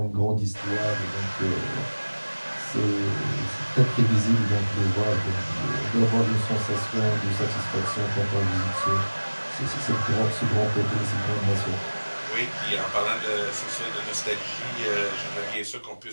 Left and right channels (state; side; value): inverted; both; correlation -1.00